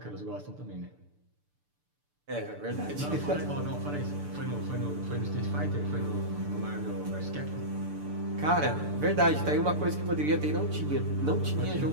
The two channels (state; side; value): late; left; 6.8 ms